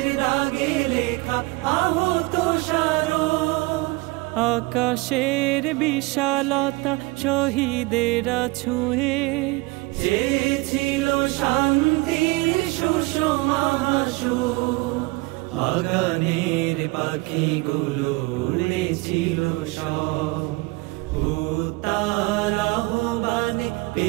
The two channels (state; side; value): quieter; left; 24.2 dB